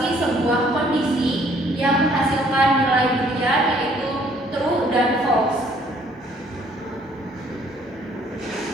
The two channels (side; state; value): both; normal; correlation 0.62